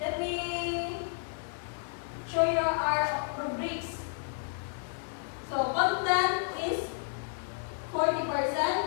me show you our rubrics. So content is 40%,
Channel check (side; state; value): right; silent; digital silence